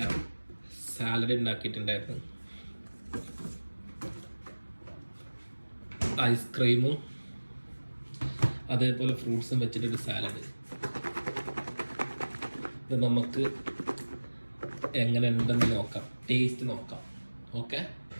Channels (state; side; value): inverted; both; correlation -1.00